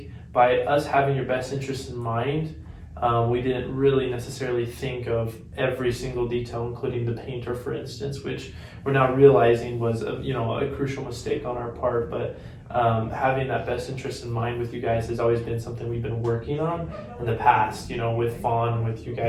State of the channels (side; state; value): both; identical; correlation 1.00